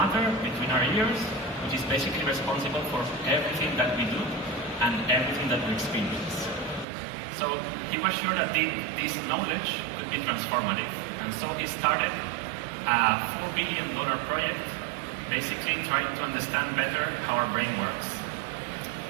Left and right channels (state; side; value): drops out; left; at 6.9 s